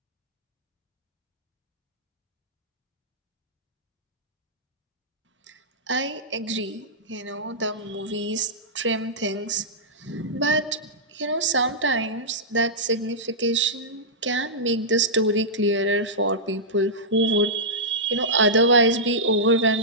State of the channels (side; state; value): both; normal; correlation -0.12